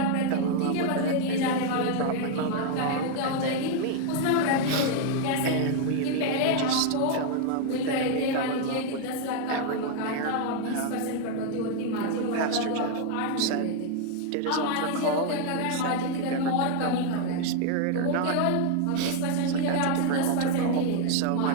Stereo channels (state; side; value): different; both; correlation 0.00